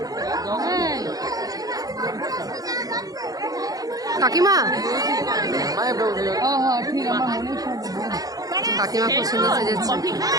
কাকিমা, কাকিমা খুব সুন্দর সেজেছে।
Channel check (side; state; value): left; late; 0.18 ms